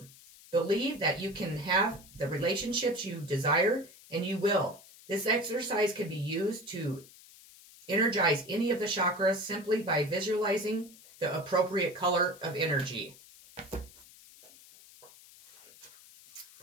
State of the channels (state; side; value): noise; left; hiss, 22 dB below the sound